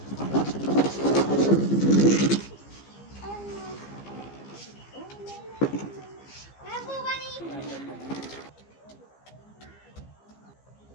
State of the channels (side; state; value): right; late; 15 ms